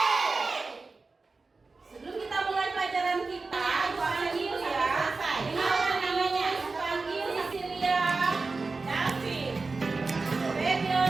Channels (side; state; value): left; quieter; 3.9 dB